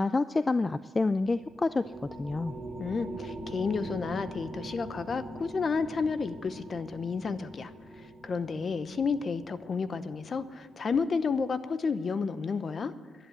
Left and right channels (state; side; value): quieter; right; 3.8 dB